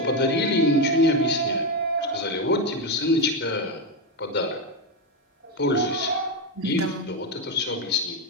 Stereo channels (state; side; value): normal; both; correlation 0.09